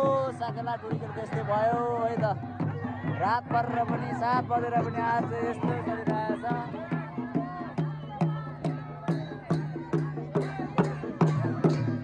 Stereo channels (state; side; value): identical; both; correlation 1.00